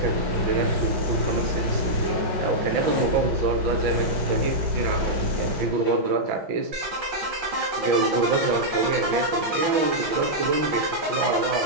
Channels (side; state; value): left; late; 5.5 ms